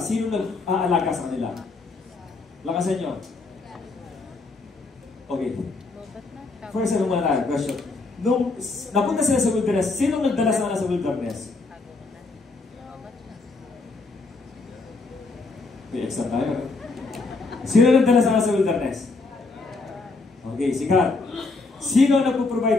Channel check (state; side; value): quieter; right; 3.7 dB